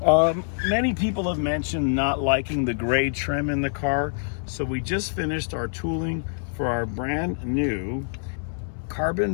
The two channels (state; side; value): silent; right; 60 dB below the other